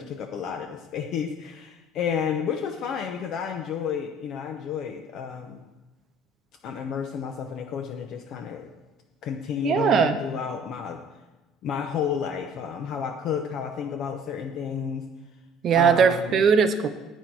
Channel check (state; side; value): normal; both; correlation 0.54